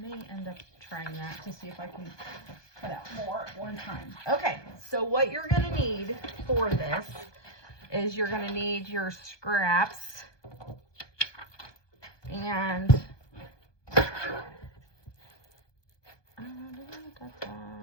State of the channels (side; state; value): right; late; 1.2 ms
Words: end up trying that to see if I can cut out more at one time. Okay, so what you're going to need for this is you're going to need your scraps. And